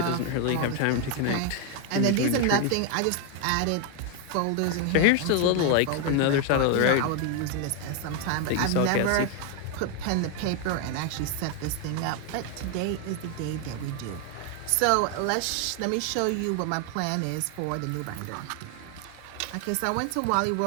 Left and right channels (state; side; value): different; both; correlation 0.01